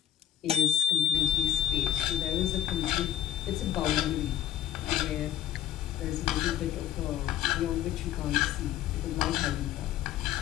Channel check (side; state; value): right; quieter; 11.6 dB